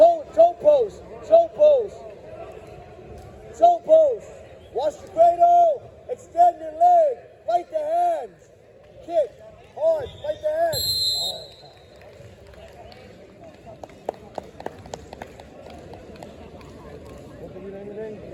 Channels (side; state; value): both; identical; correlation 1.00